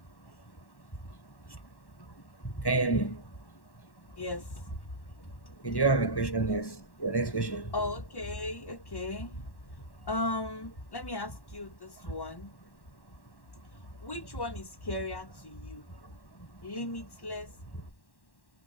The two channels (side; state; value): right; late; 1.1 ms